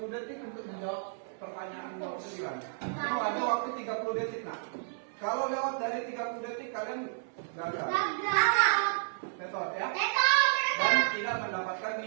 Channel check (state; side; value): silent; left; 57 dB below the other